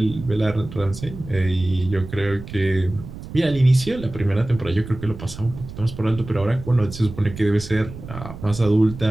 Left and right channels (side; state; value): right; noise; rumble, 13 dB below the sound